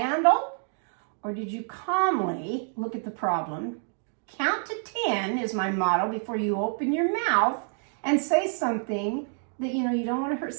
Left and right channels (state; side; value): silent; left; 55 dB below the other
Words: Or did you calmly look at the problem? Count to 10 is my motto before you open your mouth and say something that, you don't want to hurt